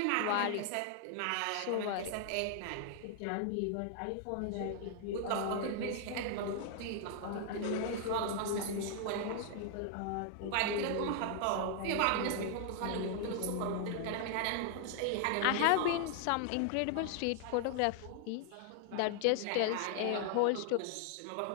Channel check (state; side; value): different; both; correlation 0.00